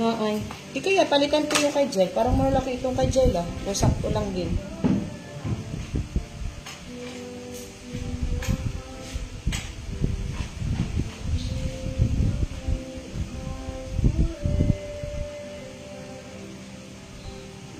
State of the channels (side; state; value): both; identical; correlation 1.00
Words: ay. Di kaya, palitan ko yung kay Jail. Parang malaki itong kay Jail, ah. O sakto lang din.